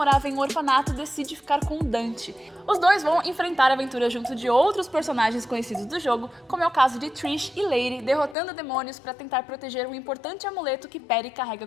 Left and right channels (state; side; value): drops out; right; at 8.3 s